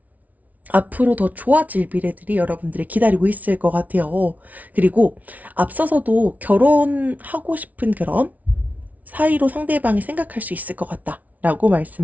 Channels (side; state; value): left; late; 0.073 ms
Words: 앞으로 더 좋아질 미래들이 여러분들이 기다리고 있을 것 같아요. 그리고 앞서서도 결혼하고 싶은 그런 사이로 상대방이 생각할 수 있을 것 같다라고